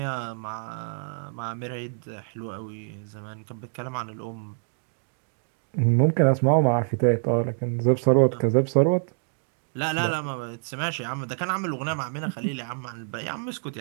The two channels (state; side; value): silent; left; digital silence